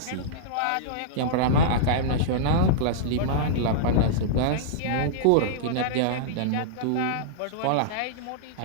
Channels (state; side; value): different; both; correlation -0.02